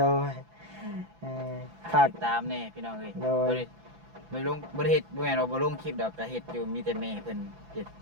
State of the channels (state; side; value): late; left; 6.0 ms